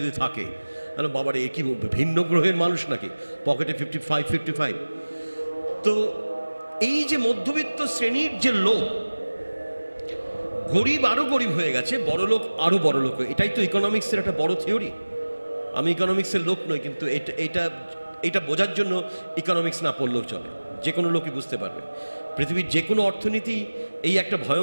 থাকে। বাবারে এ কি ভিন্ন গ্রহের মানুষ নাকি, পকেটে 55। তো এই যে মধ্যবিত্ত শ্রেণীর যে লোক, গরিব আরো গরিব হয়ে গেছে, বড় লোক আরো বড় লোক, এটাই তো ইকোনমিক্সের একটা বড় থিওরি। আমি ইকোনমিক্সের লোক নই, কিন্তু এটা বোঝার জন্য ইকোনমিক্স না পড়লেও চলে, যে কোনো লোকই বুঝতে পারবে। পৃথিবীর যে কোনো অর্থনীতি এই একটা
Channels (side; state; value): both; inverted; correlation -1.00